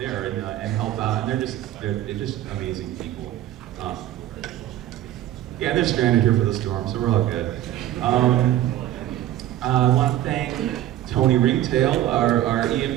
and help out. And they're just amazing people. Yeah, they're stranded here for the storm, so we're all good. I want to thank Tony Ringtail, our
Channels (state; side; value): quieter; left; 13.2 dB